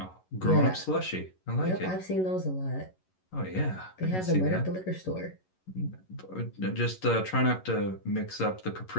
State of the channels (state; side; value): late; right; 11 ms